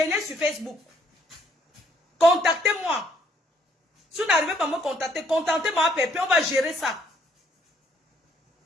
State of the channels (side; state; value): both; normal; correlation 0.67